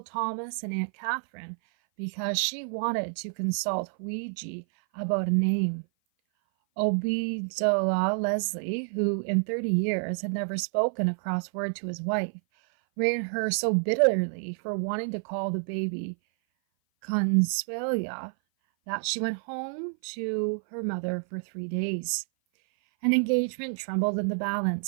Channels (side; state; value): left; silent; 56 dB below the other